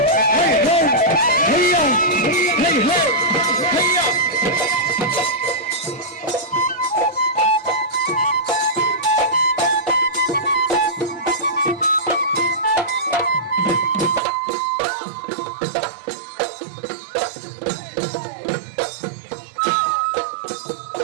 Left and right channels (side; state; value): left; drops out; at 14.2 s